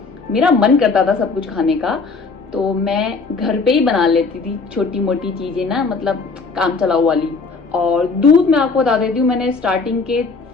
मेरा मन करता था सब कुछ खाने का, तो मैं घर पे ही बना लेती थी छोटी मोटी चीज़ें ना, मतलब काम चलाऊ वाली। और दूध मैं आपको बता देती हूँ, मैंने स्टार्टिंग के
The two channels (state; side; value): quieter; right; 4.4 dB